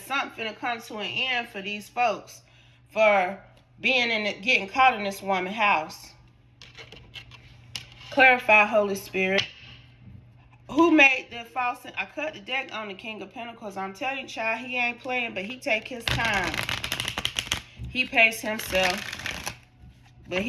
finna come to an end for these folks for being getting caught in this woman's house. Clarify, Holy Spirit. Who made the false? I cut the deck on the King of Pentacles. I'm telling you, child, he ain't playing, but he take his time. He pace himself. But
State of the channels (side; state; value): both; identical; correlation 1.00